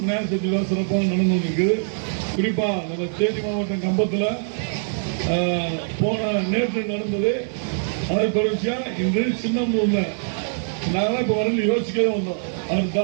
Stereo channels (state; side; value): silent; left; 63 dB below the other